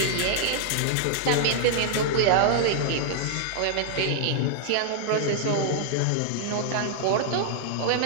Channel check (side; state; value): both; different; correlation -0.01